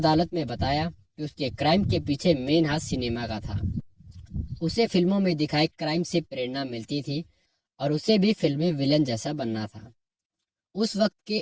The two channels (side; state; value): both; identical; correlation 1.00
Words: में बताया कि उसके क्राइम के पीछे मेन हाथ सिनेमा का था। उसे फिल्मों में दिखाए क्राइम से प्रेरणा मिलती थी और उसे भी फिल्मी विलन जैसा बनना था। उस वक्त